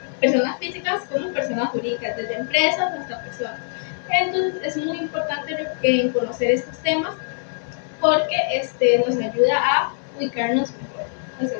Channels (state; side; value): silent; right; 63 dB below the other